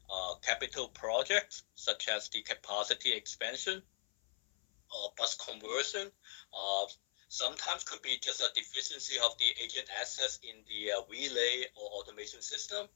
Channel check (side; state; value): right; silent; 51 dB below the other